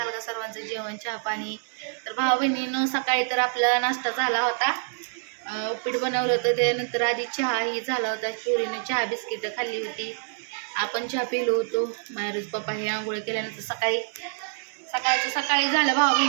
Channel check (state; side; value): silent; left; 61 dB below the other